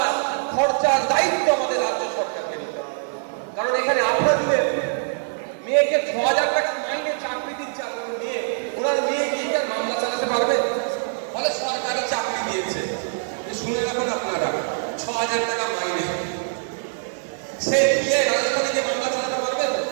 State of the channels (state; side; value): silent; left; 63 dB below the other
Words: খরচার দায়িত্ব আমাদের রাজ্য সরকারকে নিতে হবে। কারণ এখানে আপনার মেয়েকে ৬,০০০ টাকা মাইনে চাকরি দিচ্ছে, আপনার মেয়ে, ওনার মেয়ে গিয়ে তার মামলা চালাতে পারবে? বলে সরকারি চাকরি দিয়েছে, শুনে রাখুন আপনারা, ৬,০০০ টাকা মাইনে, সে দিয়ে রাজধানী যে মামলা চালাতে পারবে?